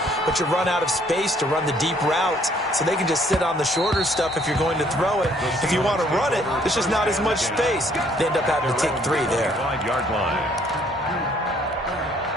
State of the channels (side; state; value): both; normal; correlation 0.63